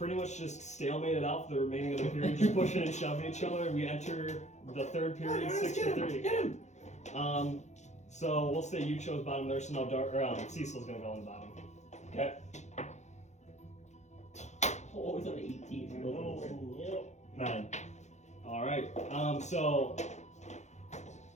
much just stalemated out for the remaining of the period. You're pushing and shoving each other. We enter the third period, 6-3. Get him. So we'll say you chose bottom there, so now Cecil's gonna go on the bottom. Okay. Oh, it's on 18. 9. All right. So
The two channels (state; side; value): late; right; 0.33 ms